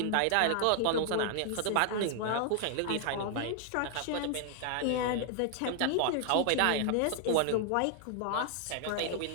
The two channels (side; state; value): both; different; correlation 0.00